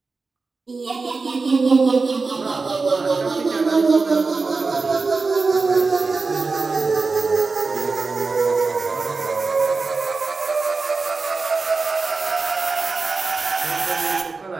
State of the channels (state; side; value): quieter; left; 4.1 dB